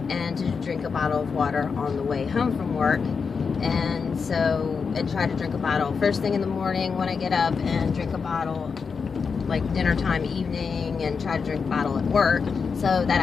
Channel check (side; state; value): right; quieter; 5.5 dB